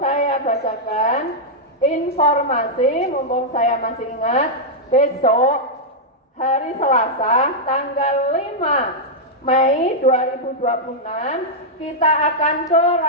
bacakan informasi, mumpung saya masih ingat, besok hari Selasa tanggal 5 Mei 2026 kita akan ke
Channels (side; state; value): both; normal; correlation -0.06